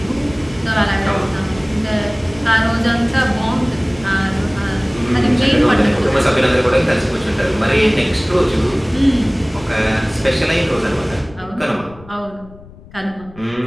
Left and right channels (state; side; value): noise; left; rumble, 20 dB below the sound